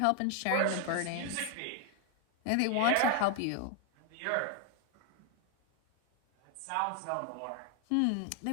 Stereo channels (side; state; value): both; different; correlation 0.01